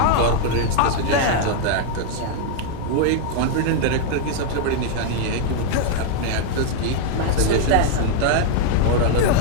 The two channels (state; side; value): different; both; correlation 0.00